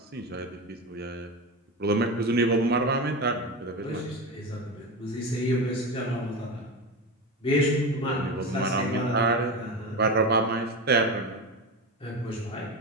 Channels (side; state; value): both; normal; correlation 0.22